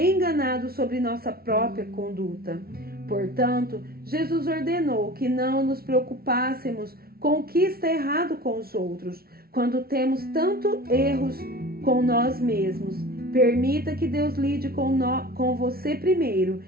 sobre nossa própria conduta. Portanto, Jesus ordenou que não nos preocupássemos com o que está errado com os outros, quando temos tantos erros com nós mesmos. Permita que Deus lide com você primeiro,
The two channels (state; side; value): late; left; 0.44 ms